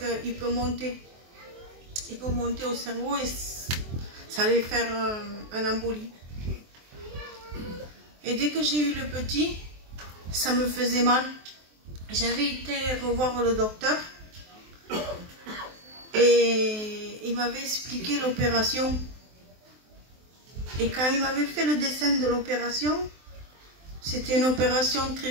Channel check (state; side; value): late; left; 23 ms